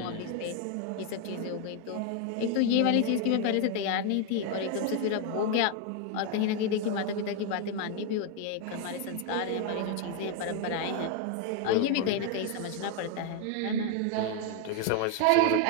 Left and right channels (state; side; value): different; both; correlation 0.01